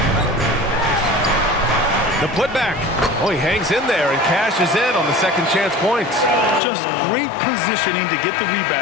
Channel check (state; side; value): drops out; right; at 6.6 s